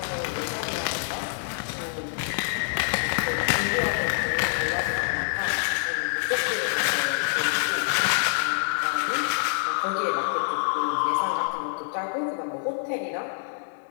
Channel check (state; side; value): silent; right; 61 dB below the other